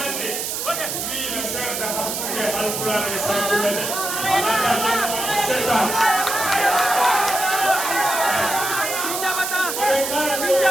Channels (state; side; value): noise; right; hiss, 3 dB below the sound